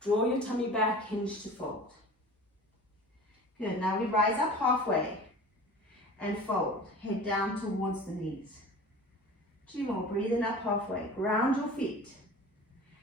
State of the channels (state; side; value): normal; both; correlation 0.39